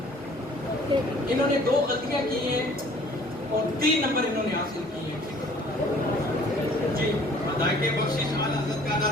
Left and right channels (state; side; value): normal; both; correlation 0.54